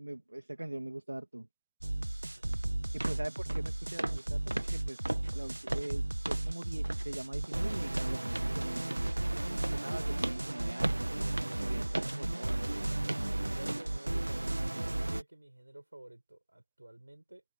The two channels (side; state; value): both; inverted; correlation -1.00